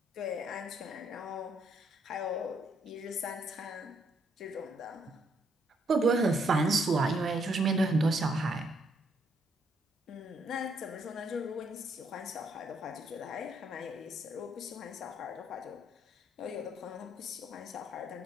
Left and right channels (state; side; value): normal; both; correlation 0.71